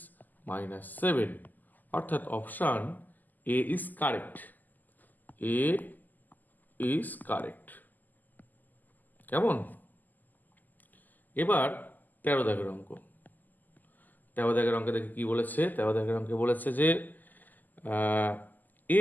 -7, অর্থাৎ option A is correct. A is correct. কেমন? এবার 13 দাগের অঙ্ক। 13 দাগের অঙ্কে দেখে কি বলেছে? 13 দাগের অঙ্কে বলেছে যে এ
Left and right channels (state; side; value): late; right; 0.084 ms